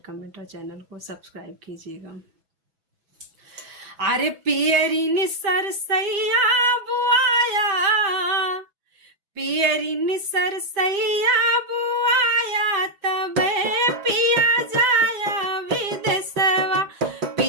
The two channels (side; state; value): left; late; 6.0 ms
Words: कमेंट और चैनल को सब्सक्राइब कीजिएगा। अरे पियरी निसर सैया बुआया, पियरी निसर सैया बुआया, तबे पिया जाया विदेशवा।